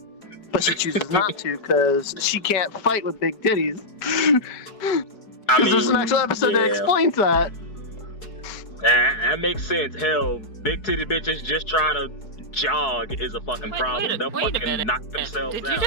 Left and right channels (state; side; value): late; right; 4.7 ms